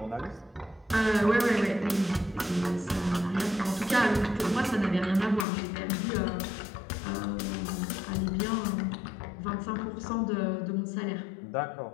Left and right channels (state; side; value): drops out; right; at 5.5 s